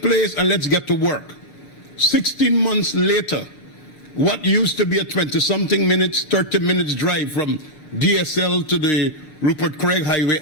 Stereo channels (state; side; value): late; right; 7.0 ms